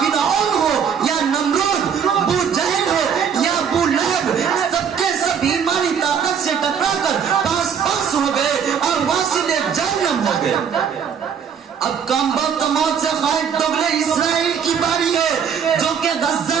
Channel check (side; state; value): left; quieter; 7.4 dB